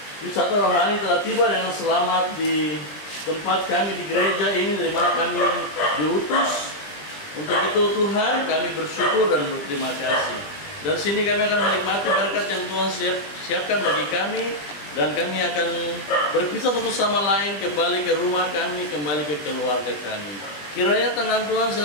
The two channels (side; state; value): right; late; 20 ms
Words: wisata rohani telah tiba dengan selamat di tempat kami di gereja ini dari mana kami diutus. Untuk itu Tuhan kami bersyukur dan berterima kasih. Dari sini kami akan menikmati berkat yang Tuhan siapkan bagi kami, dan kami akan berpisah satu sama lain, kembali ke rumah kami, kembali ke keluarga kami. Kiranya tangan Tuhan